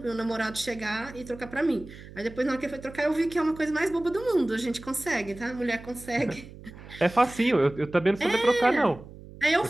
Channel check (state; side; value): noise; right; hum, 17 dB below the sound